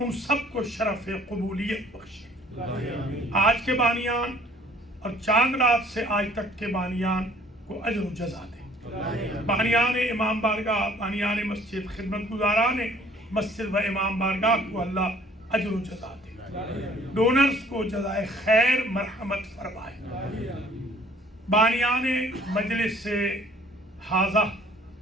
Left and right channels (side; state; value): both; normal; correlation 0.57